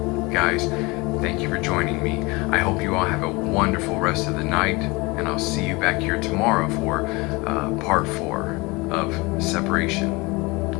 Guys, thank you for joining me. I hope you all have a wonderful rest of the night, and I'll see you back here tomorrow for part 4 of Separation.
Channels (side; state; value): right; quieter; 25.0 dB